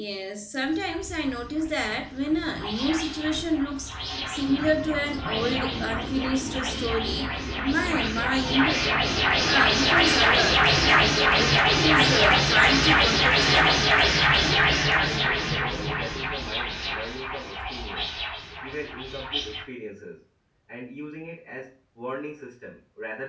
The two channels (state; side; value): identical; both; correlation 1.00